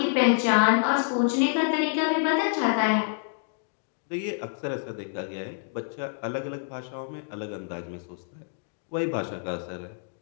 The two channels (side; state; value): right; silent; digital silence